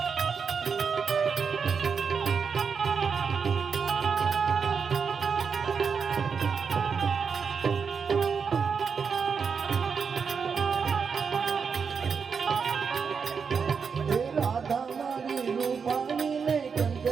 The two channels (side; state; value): left; quieter; 5.9 dB